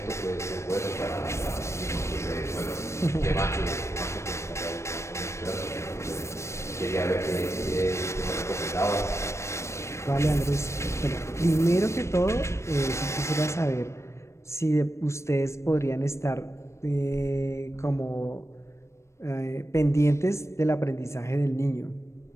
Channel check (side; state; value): right; late; 0.13 ms